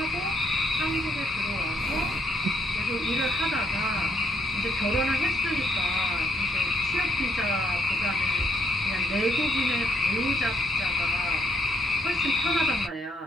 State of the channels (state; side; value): normal; both; correlation 0.71